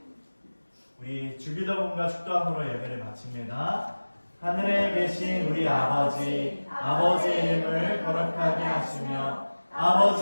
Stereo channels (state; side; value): inverted; both; correlation -1.00